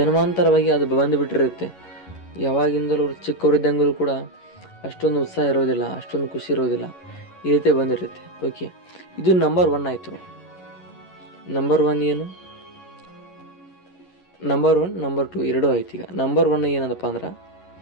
ಅದು ಬಂದುಬಿಟ್ಟಿರುತ್ತೆ. ಯಾವಾಗಿಂದಲೂ ಚಿಕ್ಕವರಿದ್ದಂಗಲೂ ಕೂಡ ಅಷ್ಟೊಂದು ಉತ್ಸಾಹ ಇರೋದಿಲ್ಲ, ಅಷ್ಟೊಂದು ಖುಷಿ ಇರೋದಿಲ್ಲ, ಈ ರೀತಿ ಬಂದಿರುತ್ತೆ. ಓಕೆ, ಇದು ನಂಬರ್ 1 ಆಯಿತು. ನಂಬರ್ 1 ಏನು? ನಂಬರ್ 1 ನಂಬರ್ 2 ಎರಡೂ ಆಯ್ತು. ಈಗ ನಂಬರ್ 1 ಏನದಪ್ಪ ಅಂದ್ರೆ,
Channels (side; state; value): right; late; 11 ms